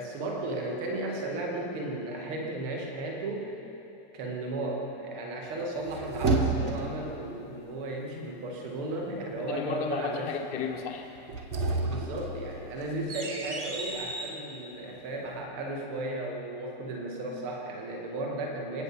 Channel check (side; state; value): left; late; 2.2 ms